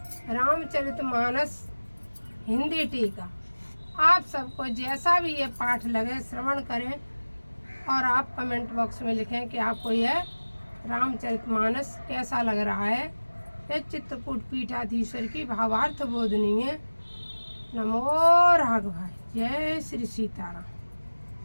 रामचरितमानस हिंदी टीका। आप सबको जैसा भी ये पाठ लगे श्रवण करें और आप कमेंट बॉक्स में लिखें कि आपको यह रामचरितमानस कैसा लग रहा है। ये चित्रकूट पीठाधीश्वर की भावार्थ बोधनी है। नमो राघव। जय श्री सीताराम।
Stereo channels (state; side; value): inverted; both; correlation -1.00